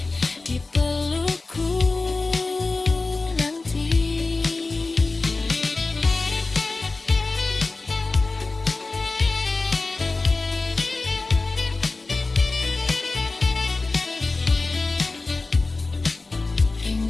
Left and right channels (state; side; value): quieter; right; 3.5 dB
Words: di pelukku nanti.